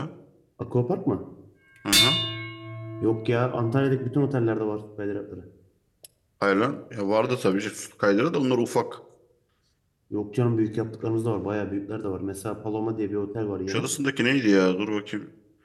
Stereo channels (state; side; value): identical; both; correlation 1.00